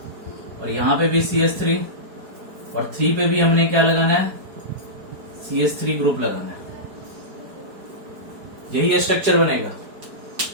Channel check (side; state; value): left; late; 4.6 ms